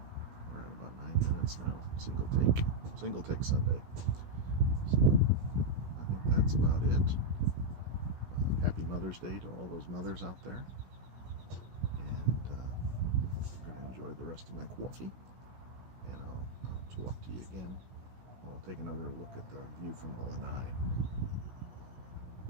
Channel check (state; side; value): late; left; 16 ms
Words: we're at about 9 minutes now. Single take Sunday. So I think that's about it. Happy Mother's Day to all those mothers out there. And I'm going to enjoy the rest of my coffee. And I'll talk to you again. I'll take another look at the view from the Lanai.